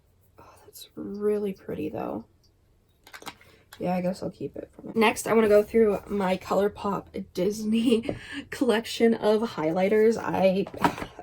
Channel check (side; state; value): both; identical; correlation 1.00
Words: Oh, that's really pretty though. Yeah, I guess I'll keep it. Next, I want to go through my ColourPop Disney collection of highlighters. I